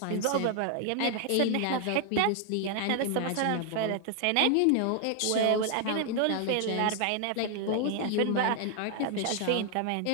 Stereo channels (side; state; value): both; different; correlation 0.00